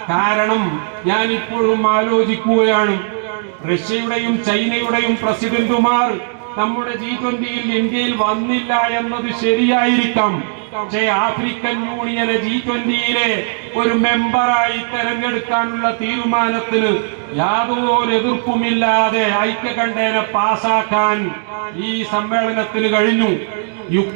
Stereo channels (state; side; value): silent; left; digital silence